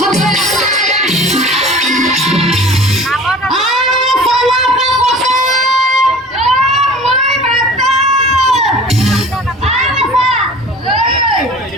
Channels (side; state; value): both; normal; correlation 0.42